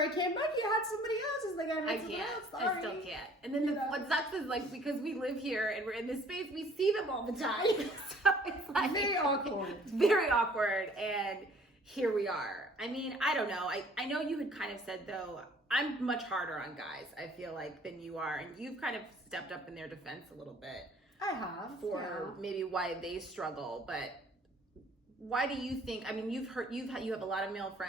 came back, you had somebody else. It's like, I can't. Sorry. I still can't. And then what sucks is because we live here and we're in this space, we see them all the time. So it's like very awkward. It's very awkward. And here we are. I mean, I don't know. I know you had kind of said, though, I'm much harder on guys, I feel like, than you are. And you've kind of stepped up in their defense a little bit. I have. For maybe why they struggle. But why do you think, I mean, you have a lot of male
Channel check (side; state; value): both; normal; correlation 0.56